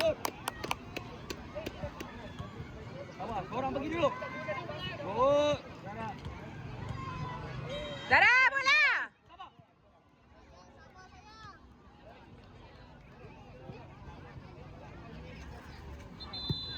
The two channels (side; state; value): both; identical; correlation 1.00